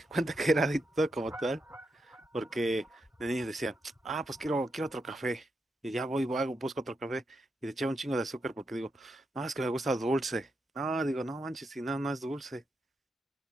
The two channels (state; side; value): normal; both; correlation 0.84